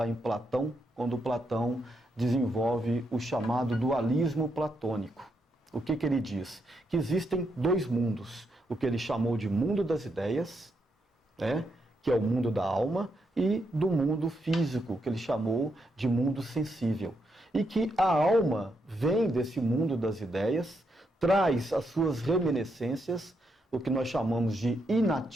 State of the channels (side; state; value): both; normal; correlation 0.80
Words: em Platão, quando Platão desenvolve o chamado dualismo platônico. O que ele diz? Que existem dois mundos, o que ele chamou de mundo das ideias, que é o mundo da alma, e do mundo físico, que ele chamou de mundo sensível. E que a alma vem desse mundo das ideias, traz as suas reminiscências, o que nós chamamos de